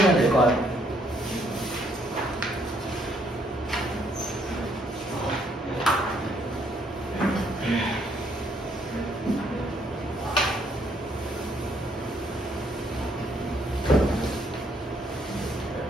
될 것 같아요.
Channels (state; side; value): normal; both; correlation 0.69